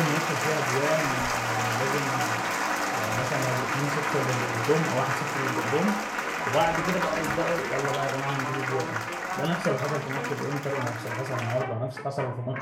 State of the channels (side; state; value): both; identical; correlation 1.00